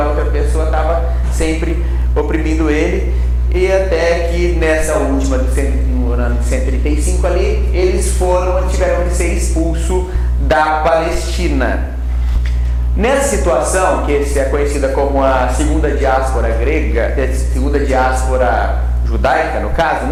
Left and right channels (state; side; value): identical; both; correlation 1.00